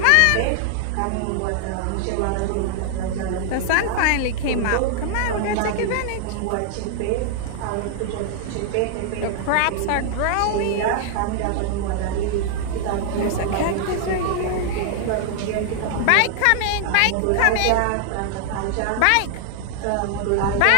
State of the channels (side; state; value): both; different; correlation -0.01